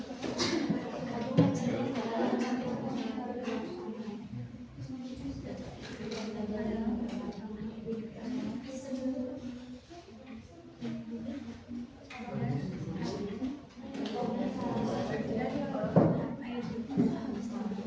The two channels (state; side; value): identical; both; correlation 1.00